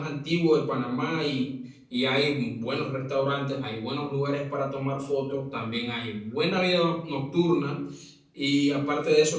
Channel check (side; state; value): both; identical; correlation 1.00